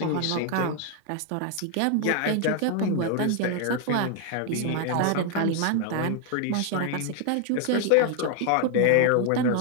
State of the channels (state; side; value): different; both; correlation 0.00